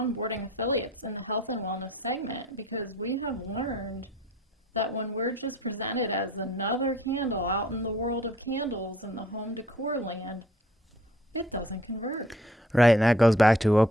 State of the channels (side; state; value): both; normal; correlation 0.56